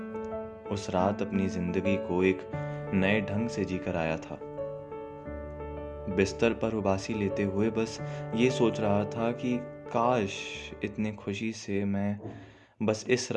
उस रात अपनी जिंदगी को एक नए ढंग से जीकर आया था। बिस्तर पर उबासी लेते हुए बस ये सोच रहा था कि काश इतनी खुशी से मैं बस इस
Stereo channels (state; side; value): identical; both; correlation 1.00